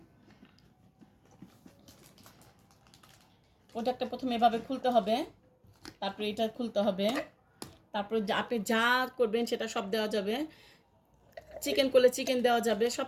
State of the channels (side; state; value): both; identical; correlation 1.00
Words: প্রোডাক্টটা প্রথমে এভাবে খুলতে হবে, তারপরে এটা খুলতে হবে, তারপরে আপনি যা করবেন সেটা সব দেওয়া যাবে। চিকেন করলে চিকেন দেওয়া যাবে, সব